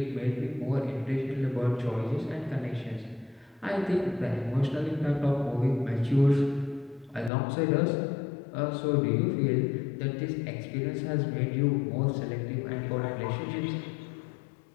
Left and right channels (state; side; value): drops out; right; at 7.3 s